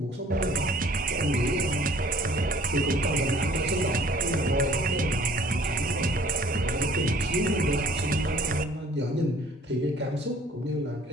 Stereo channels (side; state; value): both; normal; correlation 0.54